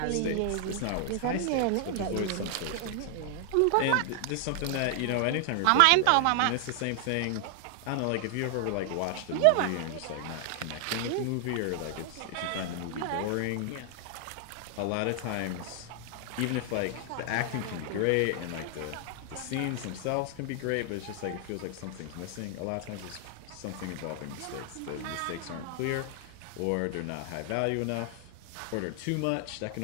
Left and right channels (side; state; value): both; different; correlation 0.00